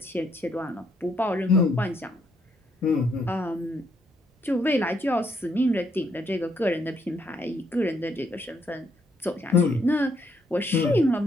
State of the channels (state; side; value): normal; both; correlation 0.73